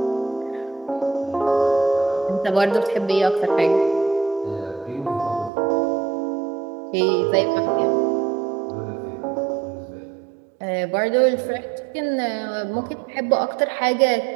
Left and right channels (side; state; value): left; drops out; at 5.5 s